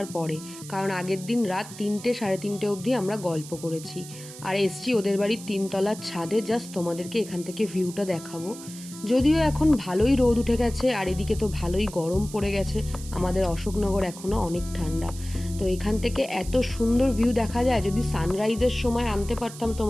পরে, কারণ আগের দিন রাত 3টে সাড়ে 3টে অবধি আমরা গল্প করেছি। আর এসছি ওদের বাড়ির 3তলার ছাদে, জাস্ট তোমাদেরকে এখান থেকে ভিউটা দেখাবো। যদিও এখন ভালোই রোদ উঠে গেছে আর এদিকে তো ভালোই গরম পড়ে গেছে, আমাদের অশোকনগর এখনও অনেক ঠান্ডা। তো এখান থেকে এত সুন্দর ভিউ দেখা যায়, যদি সানরাইজের সময় আনতে পারতাম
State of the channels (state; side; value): noise; right; hiss, 15 dB below the sound